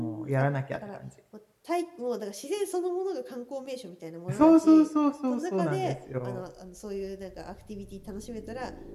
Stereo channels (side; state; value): both; identical; correlation 1.00